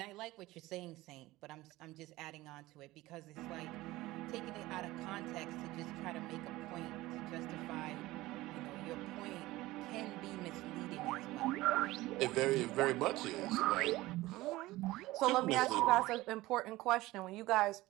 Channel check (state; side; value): quieter; left; 18.3 dB